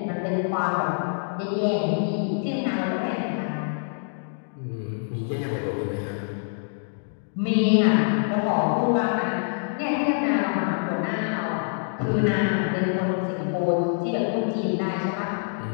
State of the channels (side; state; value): right; silent; digital silence